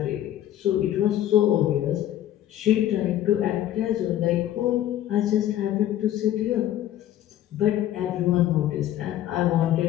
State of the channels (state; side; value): quieter; right; 12.3 dB